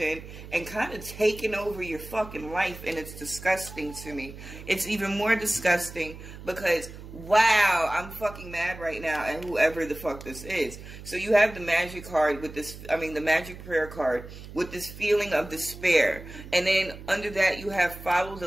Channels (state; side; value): noise; right; hum, 14 dB below the sound